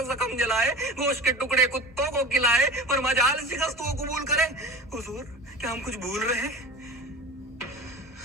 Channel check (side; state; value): both; normal; correlation 0.35